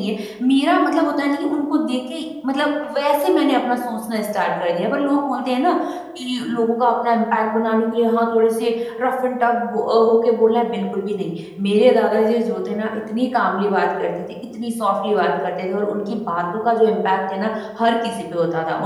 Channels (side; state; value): both; identical; correlation 1.00